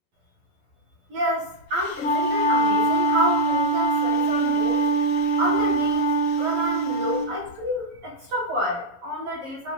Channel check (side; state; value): left; late; 11 ms